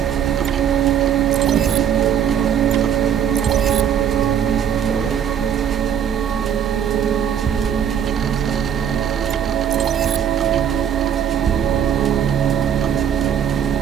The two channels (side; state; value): left; quieter; 8.8 dB